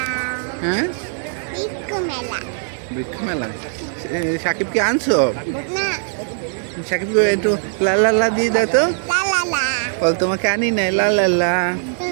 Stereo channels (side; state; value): left; silent; 66 dB below the other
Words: হ্যাঁ বৃক্ষ মেলা। সাকিবকে আনছো? সাকিবকে একটু লা লা লা দিয়ে দাও তো। বল তোমাকে আনি নাই, লা লা লা